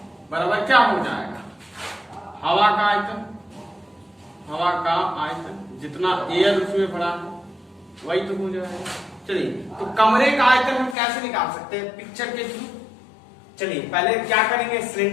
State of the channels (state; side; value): drops out; right; at 11.0 s